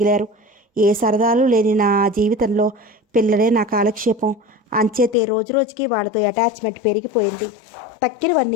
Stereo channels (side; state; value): right; drops out; at 5.2 s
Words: ఏ సరదాలు లేని నా జీవితంలో పిల్లలే నా కాలక్షేపం. అంచేతే రోజురోజుకి వాళ్ళతో అటాచ్మెంట్ పెరిగిపోయింది.